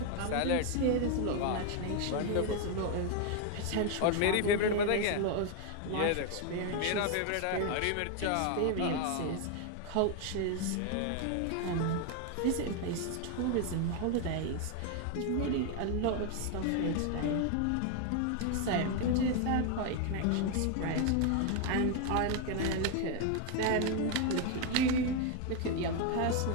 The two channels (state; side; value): different; both; correlation 0.01